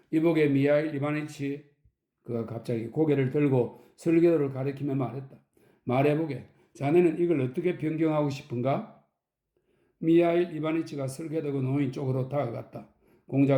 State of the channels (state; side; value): identical; both; correlation 1.00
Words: 이보게 미하일 이바니치. 그가 갑자기 고개를 들고 설계도를 가리키며 말했다. 말해보게. 자네는 이걸 어떻게 변경하고 싶은가? 미하일 이바니치가 설계도가 놓인 쪽으로 다가갔다.